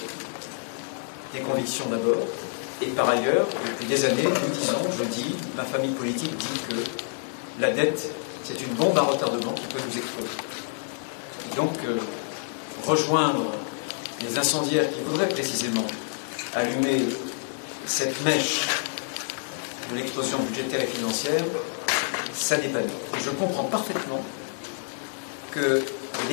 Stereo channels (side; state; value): right; silent; digital silence